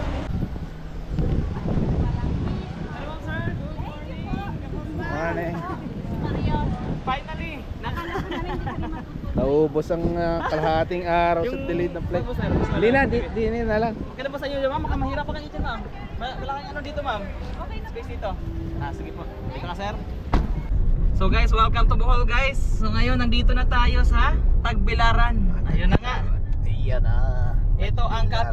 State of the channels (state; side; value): identical; both; correlation 1.00